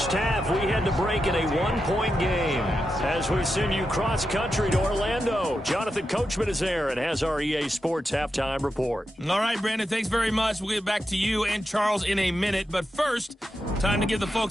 half. We had to break in a one-point game. As we send you cross-country to Orlando, Jonathan Coachman is there and has our EA Sports halftime report. All right, Brandon, thanks very much. We'll get back to you and Charles in a minute. But first, time to give the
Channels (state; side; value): normal; both; correlation 0.88